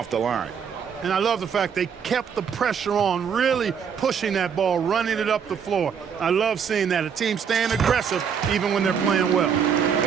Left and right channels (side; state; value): left; quieter; 7.2 dB